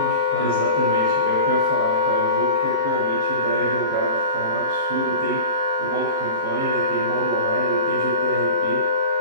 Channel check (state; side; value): inverted; both; correlation -0.34